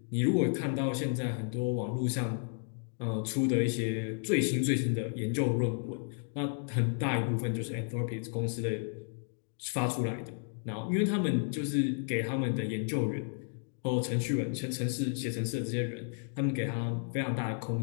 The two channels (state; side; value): silent; right; 56 dB below the other